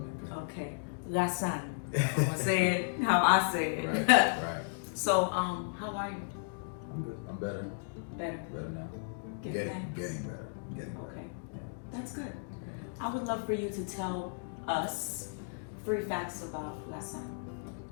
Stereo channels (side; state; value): right; silent; digital silence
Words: Okay, Lassan. I'm gonna say it how I say it. Right. So, how are you? I'm good. I'm better. Better. Better now. Getting better. Getting better. Okay, Yeah. that's good. I would love for you to tell us 3 facts about Lassan.